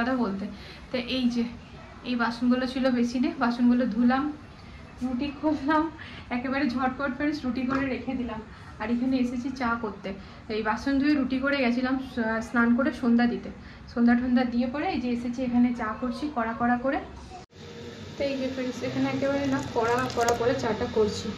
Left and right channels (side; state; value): both; identical; correlation 1.00